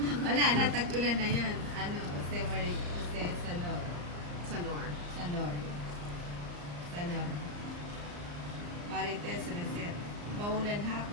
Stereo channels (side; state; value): left; late; 34 ms